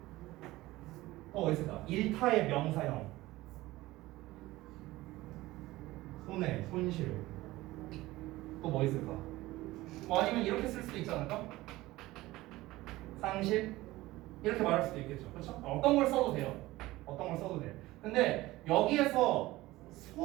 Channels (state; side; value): quieter; left; 18.2 dB